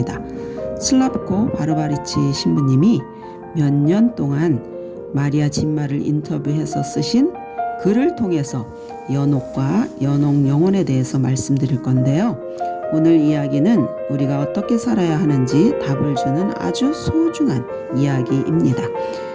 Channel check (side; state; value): both; identical; correlation 1.00